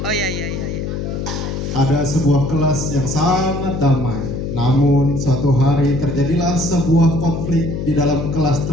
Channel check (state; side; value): noise; left; hum, 4 dB below the sound